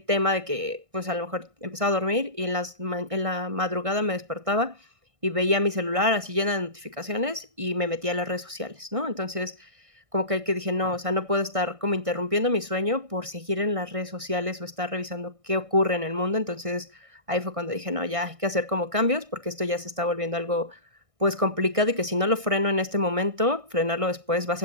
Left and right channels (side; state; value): left; late; 1.6 ms